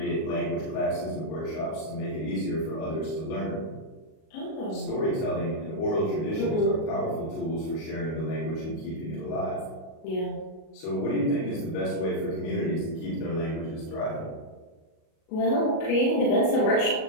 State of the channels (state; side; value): late; right; 37 ms